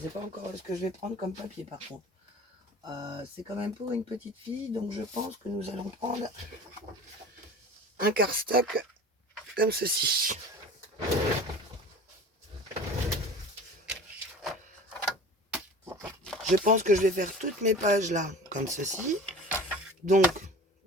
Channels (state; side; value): normal; both; correlation 0.39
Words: sais pas encore ce que je vais prendre comme papier, par contre. C'est quand même pour une petite fille, donc je pense que nous allons prendre un cardstock comme ceci. Je pense que je vais faire toutes mes pages là, comme ceci. Donc,